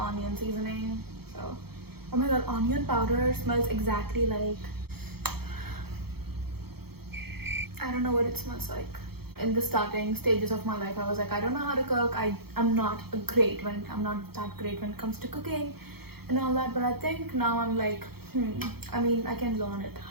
seasoning. So, oh my god, onion powder smells exactly like, I don't know what it smells like. In the starting stages of my life, I was like, I don't know how to cook. I'm not that great when it comes to cooking and all that. But I think now I'm like, I mean, I can learn it.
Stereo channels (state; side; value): late; left; 0.96 ms